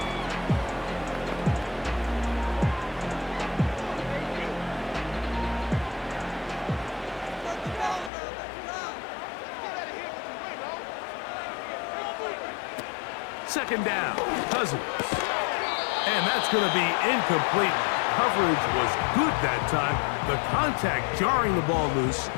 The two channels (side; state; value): right; drops out; at 8.1 s